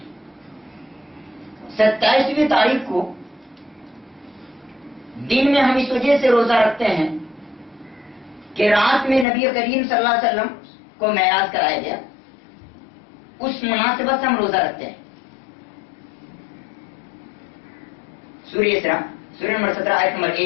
27ویں تاریخ کو دن میں ہم اس وجہ سے روزہ رکھتے ہیں کہ رات میں نبی کریم صلی اللہ علیہ وسلم کو معراج کرایا گیا، اس مناسبت سے ہم روزہ رکھتے ہیں. سورہ اسراء سورہ نمبر 17 آیت نمبر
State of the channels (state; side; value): drops out; right; at 9.2 s